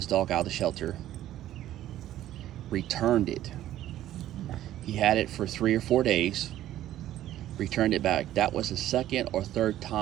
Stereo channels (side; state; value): left; quieter; 13.1 dB